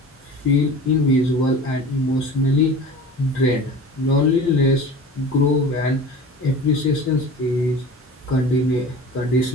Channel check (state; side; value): normal; both; correlation 0.37